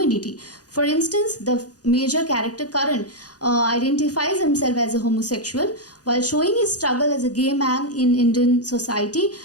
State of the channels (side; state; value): right; late; 0.68 ms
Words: For instance, the major character Karan identifies himself as a homosexual while showing his struggle as a gay man in Indian society.